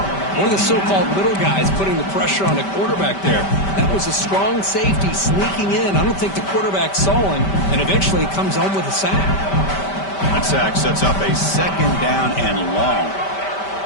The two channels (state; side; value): late; right; 5.1 ms